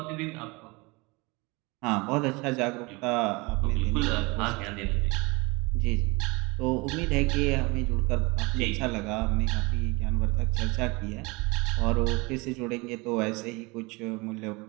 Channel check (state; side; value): quieter; left; 25.6 dB